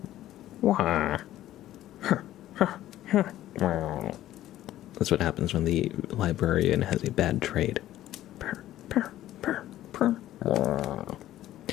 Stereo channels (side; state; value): right; quieter; 13.7 dB